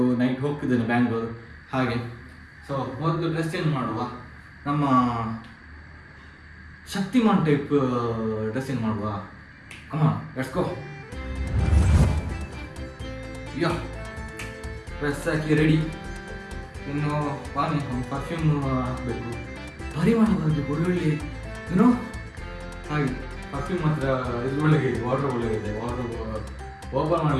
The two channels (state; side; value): identical; both; correlation 1.00